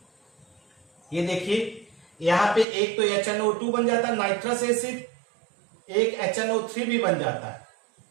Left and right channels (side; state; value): left; drops out; at 2.7 s